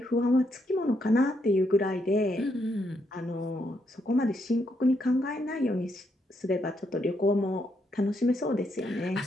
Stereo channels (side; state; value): both; normal; correlation 0.77